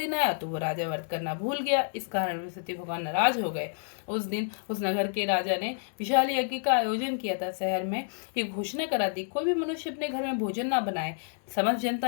आया तो वो राजा व्रत करना भूल गया। इस कारण बृहस्पति भगवान नाराज हो गए। उस दिन उस नगर के राजा ने विशाल यज्ञ का आयोजन किया था। शहर में ये घोषणा करा दी, कोई भी मनुष्य अपने घर में भोजन ना बनाए। समस्त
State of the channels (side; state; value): right; silent; digital silence